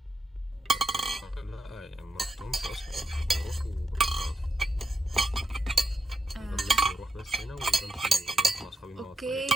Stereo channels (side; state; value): both; normal; correlation 0.85